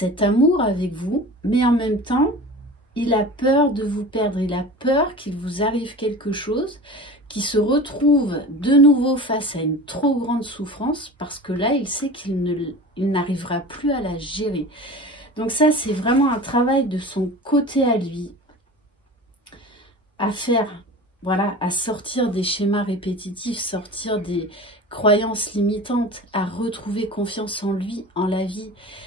amour avec vous, mais en même temps, il a peur de vous perdre, il a peur qu'il vous arrive quelque chose, qu'il se retrouve de nouveau face à une trop grande souffrance, parce que là, il sait qu'il n'arrivera plus à la gérer. Donc ça, c'est vraiment un travail de son côté à lui, à faire, voilà, à sortir des schémas répétitifs, sortir des croyances limitantes, à retrouver confiance en lui, en la vie.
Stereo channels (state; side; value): normal; both; correlation 0.35